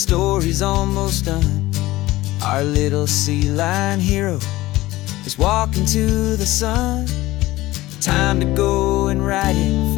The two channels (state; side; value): quieter; right; 17.8 dB